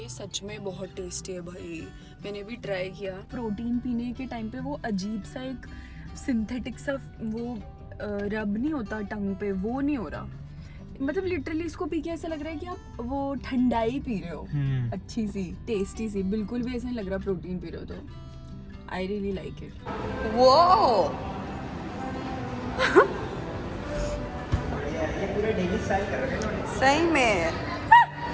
ये सच में बहुत टेस्टी है भाई। मैंने भी ट्राई किया। प्रोटीन पीने के टाइम पे वो अजीब सा एक सिंथेटिक सा वो रब नहीं होता टंग पे, वो नहीं हो रहा। मतलब लिटरली इसको पी के ऐसा लग रहा है कि आप वो ठंडाई पी रहे हो, अच्छी सी टेस्टी सी। बिल्कुल भी ऐसा नहीं लग रहा प्रोटीन पी रहे हो। तो आई रियली लाइक इट। वो ये पूरे डेली स्टाइल कर रहे हैं सही में।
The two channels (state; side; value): identical; both; correlation 1.00